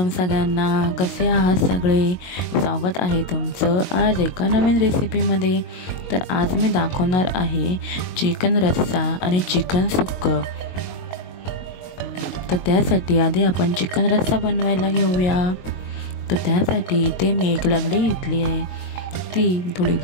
सगळ्यांना. कसे आहात सगळे? स्वागत आहे तुमचं आज एका नवीन रेसिपीमध्ये. तर आज मी दाखवणार आहे चिकन रस्सा आणि चिकन सुक्कं. तर त्यासाठी आधी आपण चिकन रस्सा बनवायला घेऊया. तर त्यासाठी इथे मी एक लंगडी घेतली आहे. ती थोडी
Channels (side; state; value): right; late; 22 ms